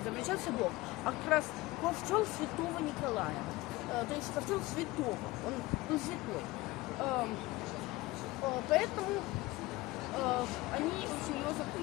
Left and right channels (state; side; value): quieter; right; 20.1 dB